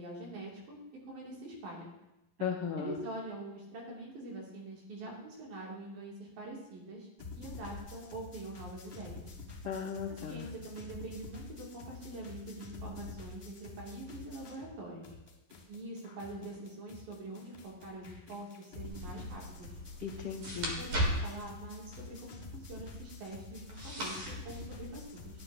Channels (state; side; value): late; left; 11 ms